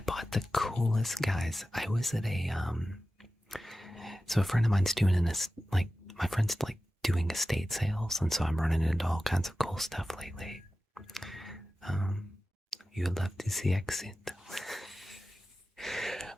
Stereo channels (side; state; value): both; normal; correlation 0.95